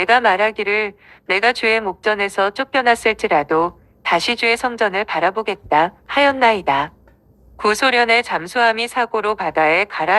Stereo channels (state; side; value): identical; both; correlation 1.00